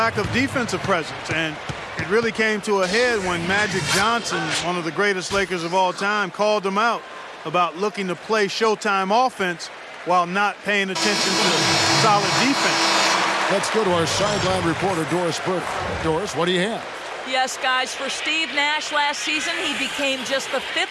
of defensive presence. And it really came to a head when Magic Johnson, one of the greatest Lakers of all time, called them out about looking to play Showtime offense while not paying attention to solid defense. Let's go to our sideline reporter, Doris Burke. Doris, what do you have? Yes, guys, for Steve Nash last season, he became just the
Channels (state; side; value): identical; both; correlation 1.00